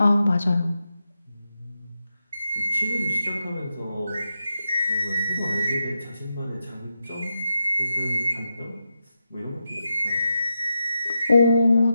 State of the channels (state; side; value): inverted; both; correlation -0.88